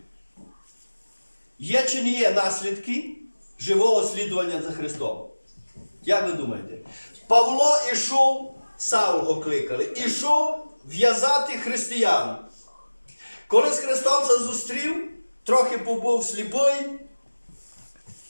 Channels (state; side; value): inverted; both; correlation -1.00